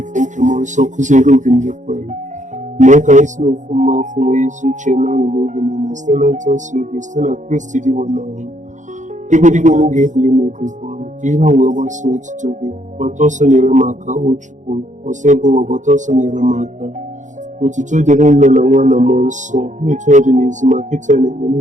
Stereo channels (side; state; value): left; late; 0.36 ms